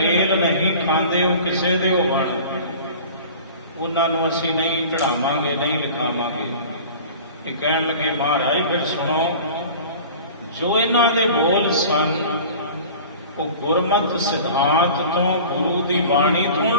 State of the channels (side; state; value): both; inverted; correlation -0.40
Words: ਨਹੀਂ ਖਾਂਦੇ ਉਹ ਕਿਸੇ ਦੇ ਹੋਵਣ, ਉਹਨਾਂ ਨੂੰ ਅਸੀਂ ਨਹੀਂ ਚੜਾਵਾਂਗੇ, ਨਹੀਂ ਲਿਖਾਵਾਂਗੇ। ਇਹ ਕਹਿਣ ਲੱਗੇ ਮਹਾਰਾਜ ਫਿਰ ਸੁਣੋ, ਜੋ ਇਹਨਾਂ ਦੇ ਬੋਲ ਸਨ ਉਹ ਗੁਰਮਤਿ ਸਿਧਾਂਤ ਤੋਂ, ਗੁਰੂ ਦੀ ਬਾਣੀ ਤੋਂ